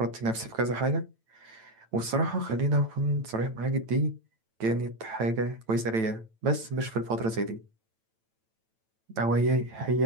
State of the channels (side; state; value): left; late; 9.0 ms